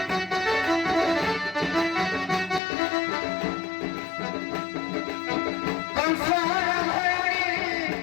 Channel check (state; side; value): drops out; right; at 2.6 s